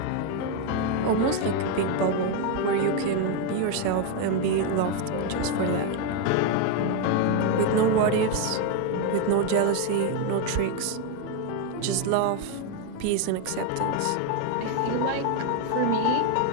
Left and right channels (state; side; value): different; both; correlation 0.02